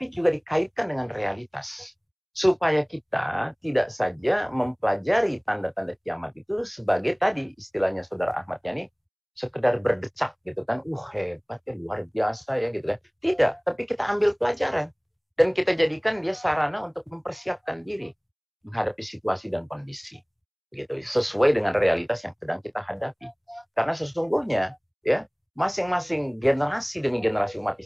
juga dikaitkan dengan realitas. Supaya kita tidak saja mempelajari tanda-tanda kiamat itu sebagai tadi istilahnya Saudara Ahmad Yani, sekedar berdecak gitu kan, hebat ya, luar biasa ya gitu kan. Tidak, tapi kita ambil pelajaran dan kita jadikan dia sarana untuk mempersiapkan diri menghadapi situasi dan kondisi. Begitu, sesuai dengan realitas yang sedang kita hadapi. Karena sesungguhnya ya, masing-masing generasi demi generasi umat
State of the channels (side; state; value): both; identical; correlation 1.00